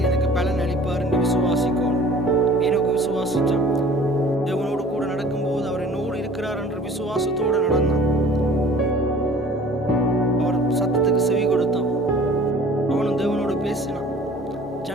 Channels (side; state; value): both; normal; correlation 0.49